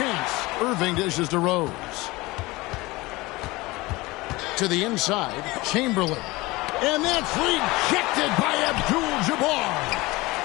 Irving dishes to Rose. To the inside, Chamberlain. And that's rejected by Abdul-Jabbar.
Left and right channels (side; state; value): right; quieter; 21.5 dB